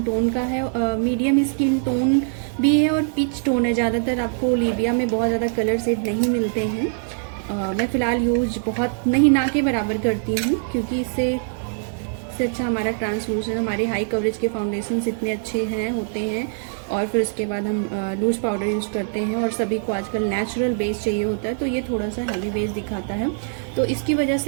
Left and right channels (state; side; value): silent; left; digital silence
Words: टोन का है। मीडियम स्किन टोन भी है और पिच टोन है। ज़्यादातर आपको ओलिविया में बहुत ज़्यादा कलर शेड नहीं मिलते हैं। मैं फ़िलहाल यूज बहुत नहीं, ना के बराबर करती हूँ, क्योंकि इससे अच्छा हमारा ट्रांसलूसेंट, हमारे हाई कवरेज के फाउंडेशंस इतने अच्छे होते हैं। और फिर उसके बाद हम लूज पाउडर यूज़ करते हैं, और सभी को आजकल नेचुरल बेस चाहिए होता है, तो ये थोड़ा सा हैवी बेस दिखाता है। तो इसकी वजह